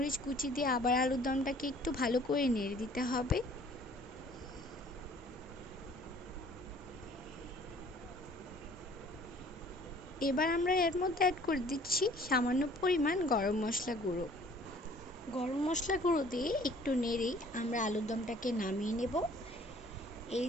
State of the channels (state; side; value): normal; both; correlation 0.54